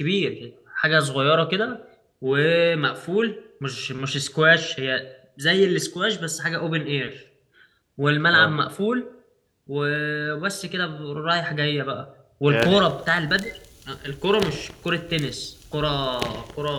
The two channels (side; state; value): both; identical; correlation 1.00